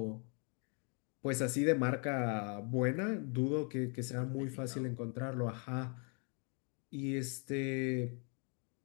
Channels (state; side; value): quieter; right; 37.5 dB